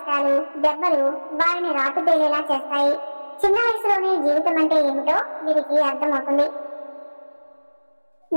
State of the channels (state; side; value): inverted; both; correlation -1.00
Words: దెబ్బలు వారిని రాటుదేలేలా చేస్తాయి. చిన్న వయసులోనే జీవితం అంటే ఏమిటో వీరికి అర్థమవుతుంది.